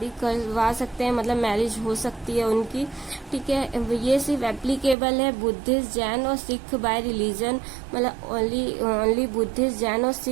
करवा सकते हैं, मतलब मैरिज हो सकती है उनकी। ठीक है। ये सिर्फ एप्लीकेबल है बुद्धिस्ट, जैन और सिख बाय रिलीजन, मतलब ओनली बुद्धिस्ट, जैन और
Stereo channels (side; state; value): left; drops out; at 5.0 s